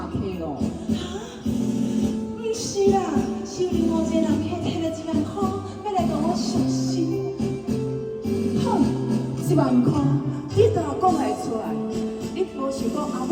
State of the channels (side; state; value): both; identical; correlation 1.00